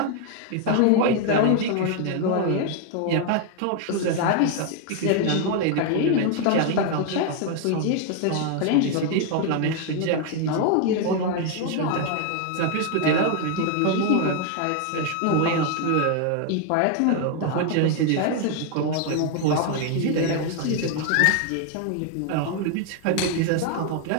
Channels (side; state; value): both; different; correlation 0.01